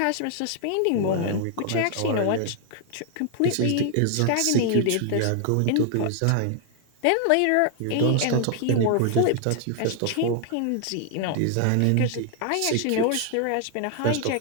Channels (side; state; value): both; different; correlation 0.00